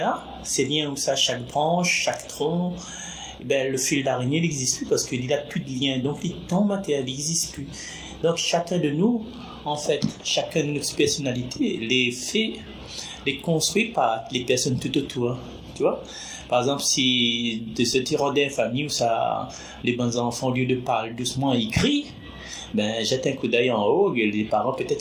ces liens où ça, chaque branche, chaque tronc, le fil d'araignée n'existe plus parce qu'il n'a plus de lien, donc les temps matériels n'existent plus. Donc chacun de nous, en fait, chacun de nos personnalités, les construit par les personnes tout autour. Tu vois? Par exemple, si de ce tyran d'une famille où ça, les bons enfants, au lieu de parler doucement, ils crient, jette un coup d'œil en haut, et les parents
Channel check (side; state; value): both; identical; correlation 1.00